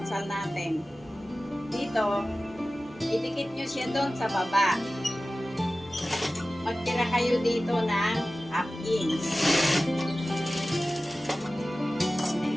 natin. Dito, idikit nyo siya doon sa baba. Magtira kayo dito ng half inch.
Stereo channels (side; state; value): both; normal; correlation 0.96